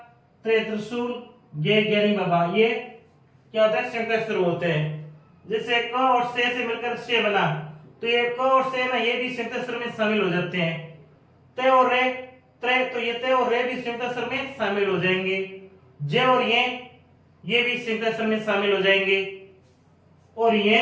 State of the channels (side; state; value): both; identical; correlation 1.00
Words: त्रे त्रिशूल, गे ज्ञानी बाबा, ये क्या होता है? संयुक्त अक्षर होते हैं। जैसे क और से मिलकर से बना, तो ये क और से ना, ये भी संयुक्त अक्षर में शामिल हो जाते हैं। ते और रे, त्रे, तो ये ते और रे भी संयुक्त अक्षर में शामिल हो जाएंगे। जे और ये भी संयुक्त अक्षर में शामिल हो जाएंगे। और